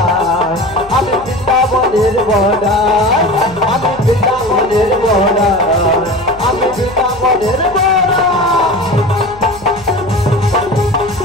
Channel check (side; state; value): left; noise; hum, 20 dB below the sound